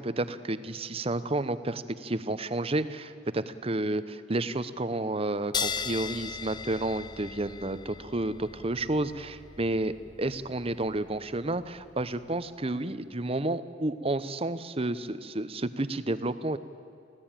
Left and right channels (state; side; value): normal; both; correlation 0.50